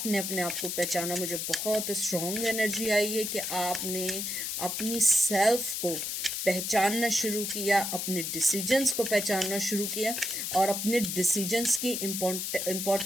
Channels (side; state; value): left; noise; hiss, 3 dB below the sound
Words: अपने आप को पहचाना। मुझे बहुत स्ट्रॉन्ग एनर्जी आई है कि आपने अपनी सेल्फ को पहचानना शुरू किया, अपने डिसीजंस को पहचानना शुरू किया और अपने डिसीजंस की